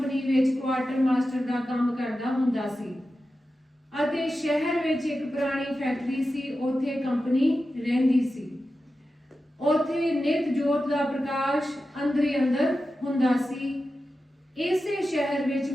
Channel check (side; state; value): both; normal; correlation 0.92